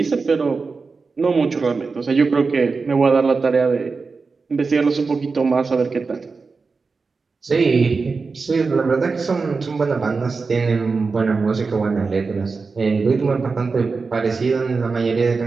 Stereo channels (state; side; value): quieter; left; 4.5 dB